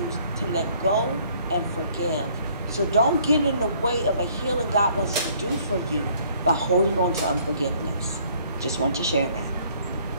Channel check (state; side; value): inverted; both; correlation -0.61